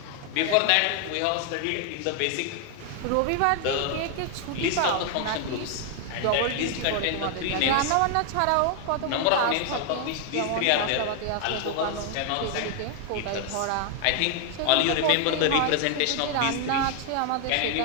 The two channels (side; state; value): both; different; correlation 0.01